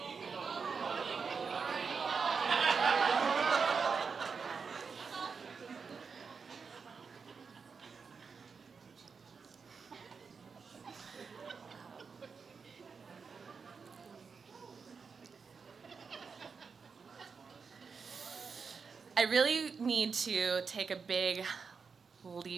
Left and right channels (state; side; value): quieter; left; 5.4 dB